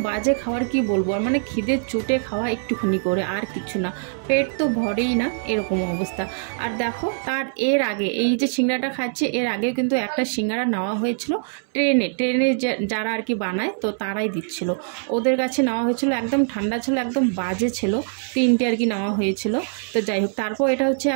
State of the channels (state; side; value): silent; left; 63 dB below the other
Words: বাজে খাবার কি বলবো আর, মানে খিদে চুটে খাওয়া একটুখানি করে, আর কিছু না, পেট তো ভরেই না, এরকম অবস্থা। আর দেখো তার এর আগে এই যে সিঙ্গারাটা খাচ্ছে, এর আগেও কিন্তু একটা সিঙ্গারা নেওয়া হয়েছিল ট্রেনে যারা আর কি বানায় তো তারাই দিচ্ছিল, ওদের কাছে নেওয়া হয়েছিল, একদম ঠান্ডা ছিল, একদম বাজে ছিল, তিনটে আর কি নেওয়া হয়েছিল। তো যাই হোক, তারপর এটা হচ্ছে